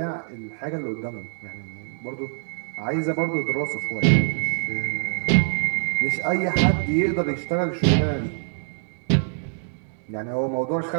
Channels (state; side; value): silent; left; digital silence